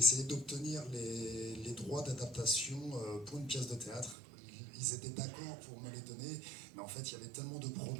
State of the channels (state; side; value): drops out; left; at 4.2 s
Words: d'obtenir les droits d'adaptation pour une pièce de théâtre. Ils étaient d'accord pour me les donner, mais en fait il y avait tellement de